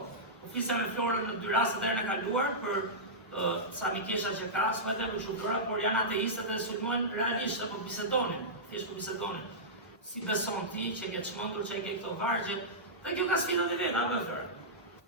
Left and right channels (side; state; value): both; normal; correlation -0.13